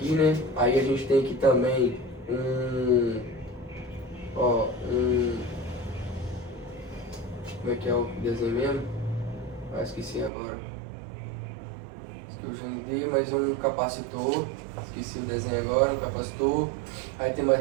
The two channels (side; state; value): left; drops out; at 10.3 s